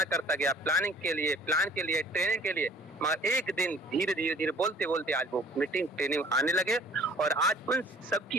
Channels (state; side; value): normal; both; correlation 0.53